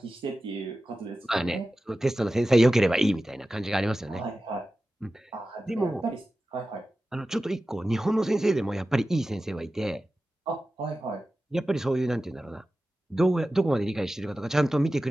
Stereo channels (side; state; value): both; normal; correlation 0.94